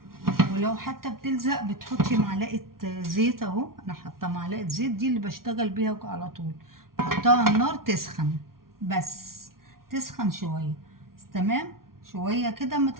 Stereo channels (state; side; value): late; left; 0.93 ms